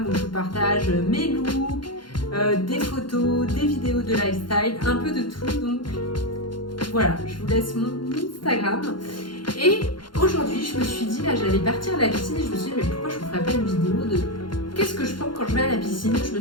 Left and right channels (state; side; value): late; right; 0.72 ms